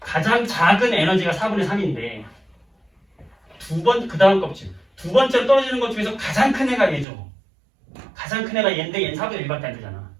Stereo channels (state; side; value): drops out; left; at 7.1 s